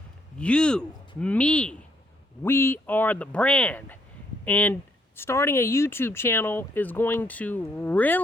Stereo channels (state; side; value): normal; both; correlation 0.71